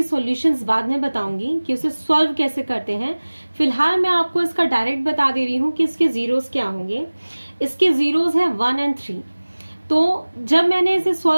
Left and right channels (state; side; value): inverted; both; correlation -1.00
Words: सॉल्यूशंस बाद में बताऊंगी कि उसे सॉल्व कैसे करते हैं। फिलहाल मैं आपको इसका डायरेक्ट बता दे रही हूँ कि इसके जीरोस क्या होंगे। इसके जीरोस हैं 1 और 3। तो जब मैंने इसे